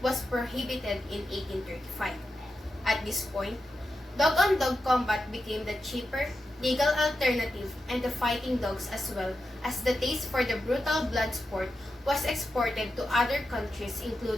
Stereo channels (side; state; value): both; normal; correlation 0.89